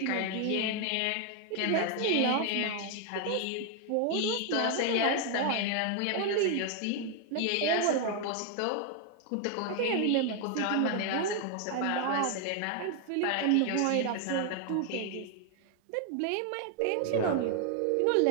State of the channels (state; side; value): different; both; correlation 0.00